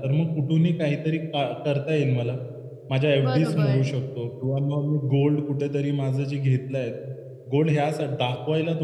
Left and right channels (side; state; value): both; identical; correlation 1.00